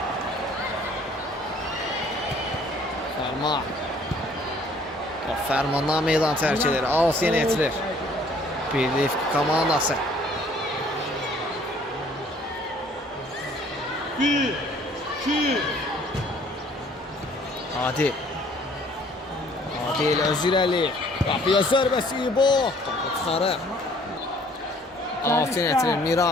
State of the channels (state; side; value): normal; both; correlation 0.58